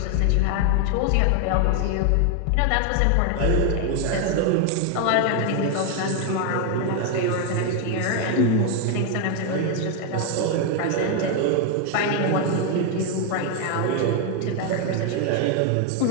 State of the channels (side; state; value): both; different; correlation 0.01